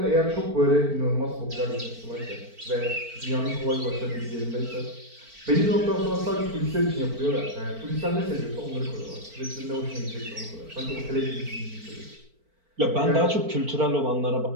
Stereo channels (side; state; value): left; late; 4.5 ms